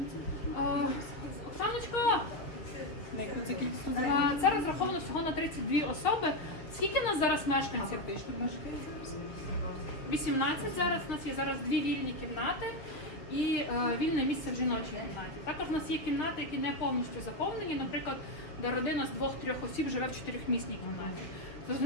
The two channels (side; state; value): right; late; 6.2 ms